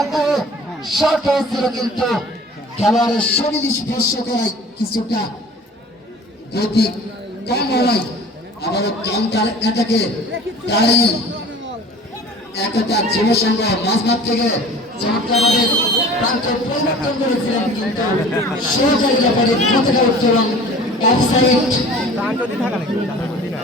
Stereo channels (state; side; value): normal; both; correlation 0.44